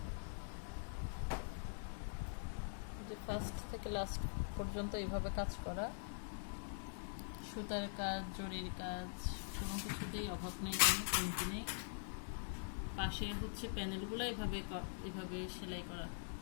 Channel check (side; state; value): right; silent; digital silence